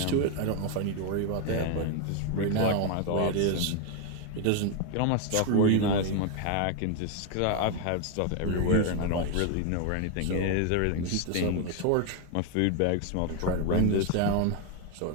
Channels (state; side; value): different; both; correlation 0.01